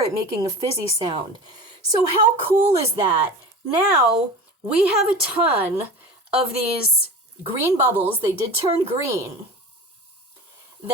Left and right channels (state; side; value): normal; both; correlation 0.32